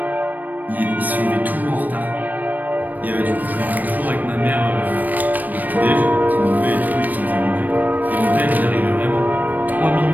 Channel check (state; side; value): late; left; 0.085 ms